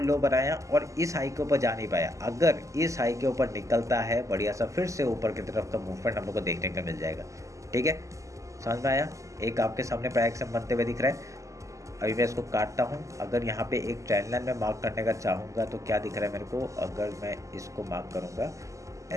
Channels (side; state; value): left; late; 0.16 ms